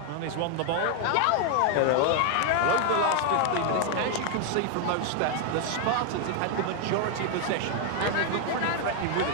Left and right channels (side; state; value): both; different; correlation 0.00